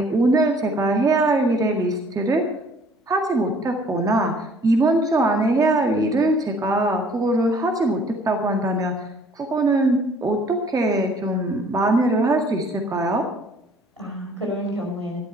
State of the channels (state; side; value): normal; both; correlation 0.57